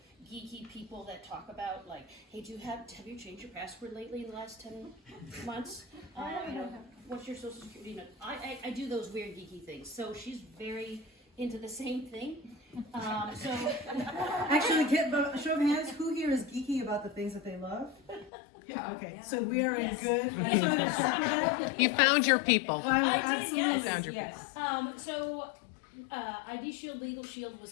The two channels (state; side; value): drops out; right; at 18.3 s